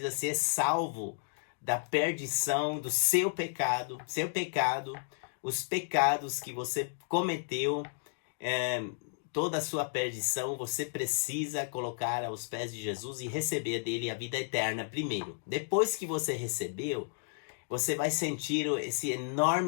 ser salvo da perdição do seu pecado, os pecados que você cometeu, toda a sua perdição, você precisa colocar aos pés de Jesus e receber dele a vida eterna primeiro. Depois que você recebeu, você vai sentir esse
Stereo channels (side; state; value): right; silent; digital silence